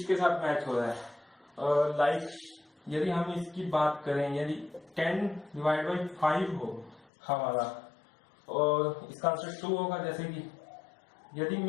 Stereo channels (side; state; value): right; drops out; at 7.1 s